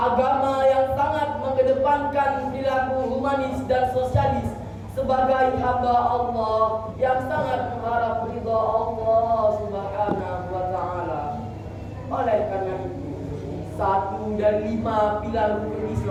yang sangat mengedepankan perilaku humanis dan sosialis sebagai hamba Allah yang sangat mengharap ridha Allah Subhanahu wa Ta'ala. Oleh karena itu, 1 dari 5 pilar rukun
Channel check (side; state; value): both; identical; correlation 1.00